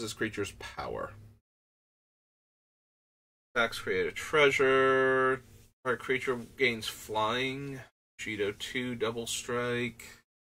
this creature's power. Attacks, create a treasure. Target creature gains flying. Cheeto 2, double strike.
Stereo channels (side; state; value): both; identical; correlation 1.00